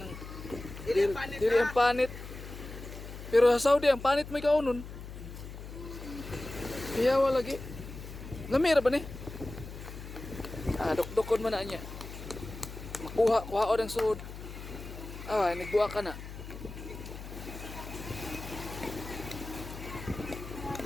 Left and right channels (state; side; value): noise; left; hum, 11 dB below the sound